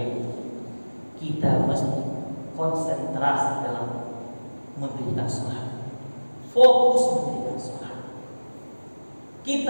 kita mesti konsentrasi dalam mendirikan sholat, fokus mendirikan sholat.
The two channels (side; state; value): both; inverted; correlation -1.00